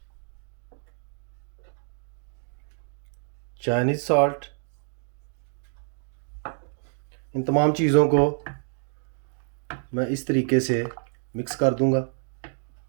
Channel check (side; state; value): left; silent; digital silence